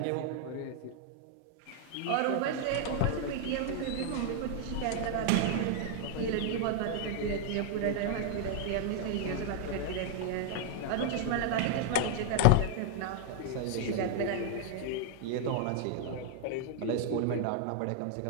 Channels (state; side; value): different; both; correlation -0.01